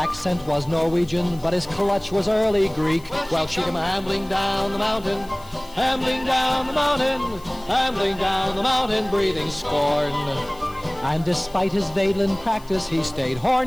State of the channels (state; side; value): noise; left; hiss, 24 dB below the sound